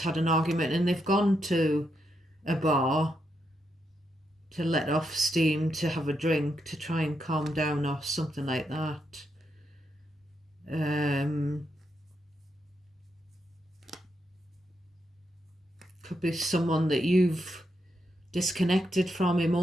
an argument and they've gone to a bar let off steam, to have a drink, to try and calm down or something like that. Could be someone that you've disconnected from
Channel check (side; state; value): both; normal; correlation 0.82